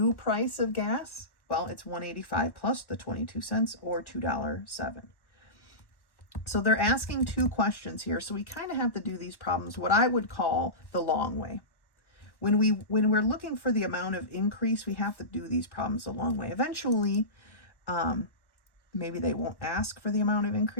price of gas? Well, it's $1.85 plus the 22 cents, or $2.07. So they're asking two questions here. So we kind of have to do these problems what I would call the long way. When we're looking for the amount of increase, we have to do these problems the long way. Eventually, maybe they won't ask for the amount of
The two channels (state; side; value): late; right; 1.1 ms